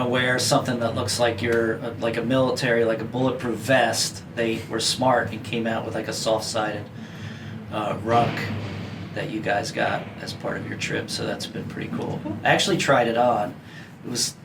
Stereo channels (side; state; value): both; identical; correlation 1.00